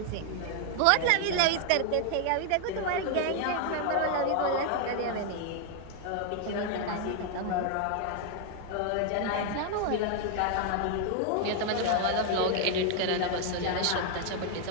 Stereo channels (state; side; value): different; both; correlation 0.00